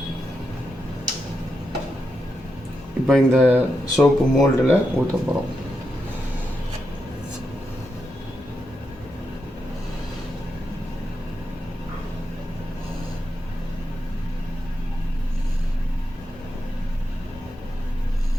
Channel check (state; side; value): normal; both; correlation 0.86